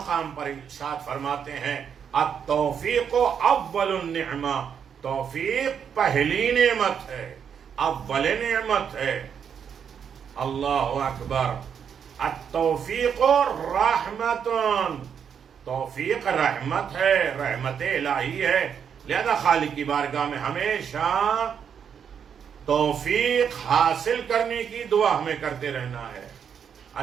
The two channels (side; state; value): left; quieter; 7.6 dB